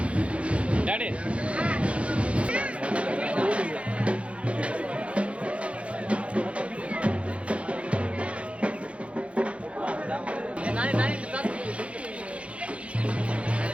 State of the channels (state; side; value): late; left; 0.062 ms